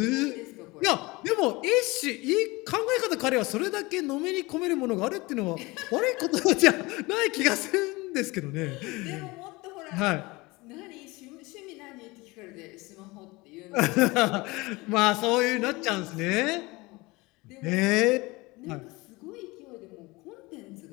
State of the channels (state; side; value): quieter; right; 23.0 dB